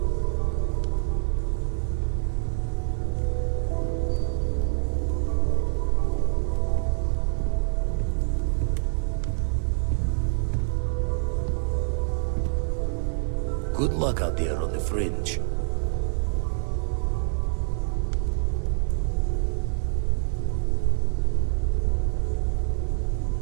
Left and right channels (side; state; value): left; silent; 61 dB below the other